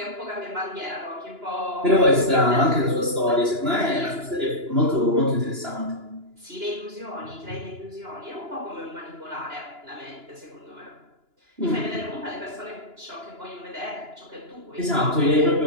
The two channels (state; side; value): late; left; 2.9 ms